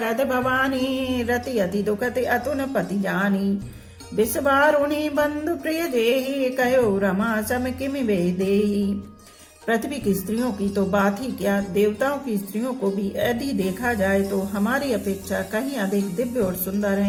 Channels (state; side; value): identical; both; correlation 1.00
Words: भवानी, रति अति दुखति अतुन पति जानी। बिस्वार उन्हीं बंधु प्रिय जेहि, कहो रमा सम किमि वेदेहि। पृथ्वी की स्त्रियों की तो बात ही क्या, देवताओं की स्त्रियों को भी यदि देखा जाए तो हमारी अपेक्षा कहीं अधिक दिव्य और सुंदर